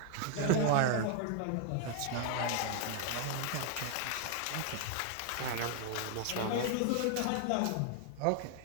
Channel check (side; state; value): both; different; correlation 0.01